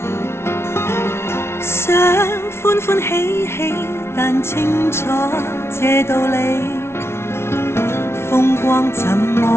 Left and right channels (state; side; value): late; right; 0.12 ms